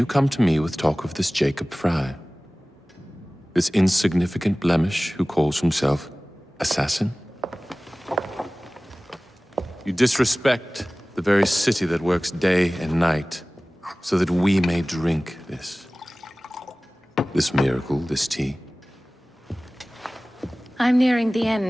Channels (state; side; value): normal; both; correlation 0.98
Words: come to me with talk of this Jacob Fry, this insignificant blemish who calls himself assassin? You disrespect the very city that works day and night so that we may drink this miracle, this tea. I'm nearing the